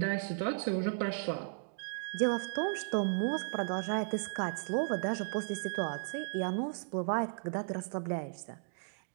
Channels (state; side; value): silent; left; digital silence